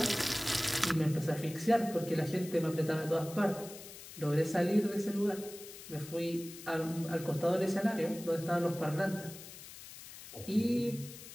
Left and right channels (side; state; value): left; noise; hiss, 15 dB below the sound